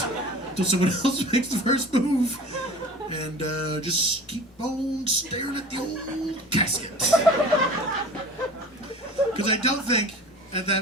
until someone else makes the first move, and just keep on staring at the old casket. Because I don't think at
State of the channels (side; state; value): both; normal; correlation 0.40